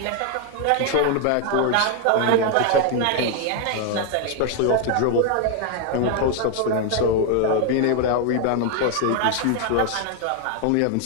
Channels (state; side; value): different; both; correlation 0.01